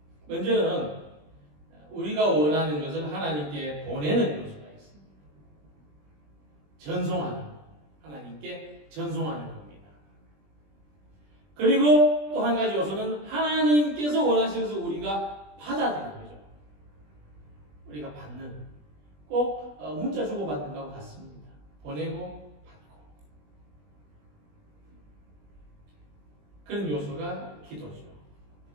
먼저는 우리가 원하는 것을 하나님께 보내는 요소가 있습니다. 전송하는, 하나님께 전송하는 겁니다. 그리고 또 한 가지 요소는 하나님께서 원하시는 것을 우리가 받아들이는 거죠. 우리가 받는, 꼭 문자 주고받는 것과 같습니다. 보내고 받고. 그런 요소가 기도죠.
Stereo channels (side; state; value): left; late; 20 ms